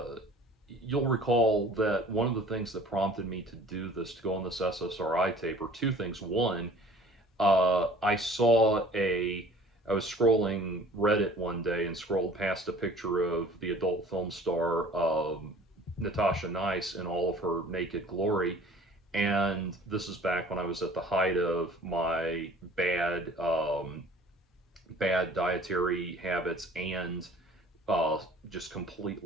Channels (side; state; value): both; normal; correlation 0.49